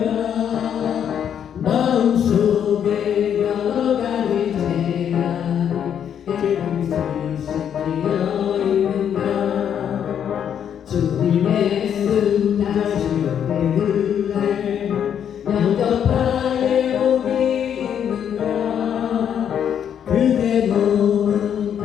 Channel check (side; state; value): right; quieter; 8.8 dB